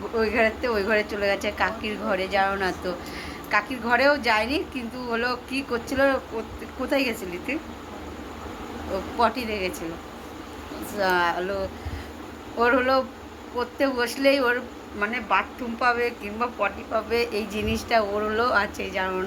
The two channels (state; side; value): identical; both; correlation 1.00